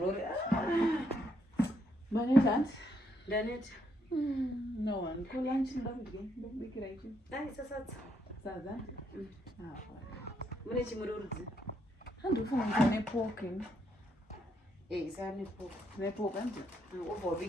manetandi ndaneta no one ko lunch ndakubikira ichi dai sasadza sadza mune chimururudzi handifunga nepork isa nepo nepork andi ubva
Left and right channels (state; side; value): normal; both; correlation 0.75